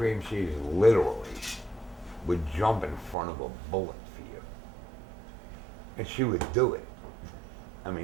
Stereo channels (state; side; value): drops out; left; at 3.2 s